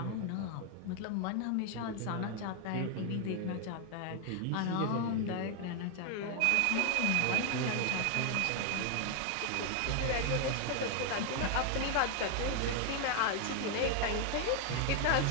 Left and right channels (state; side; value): different; both; correlation 0.00